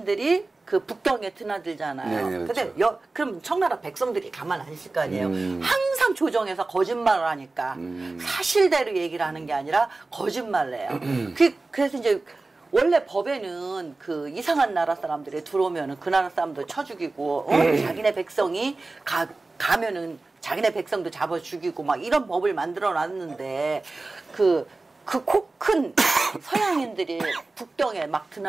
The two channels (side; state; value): left; quieter; 3.4 dB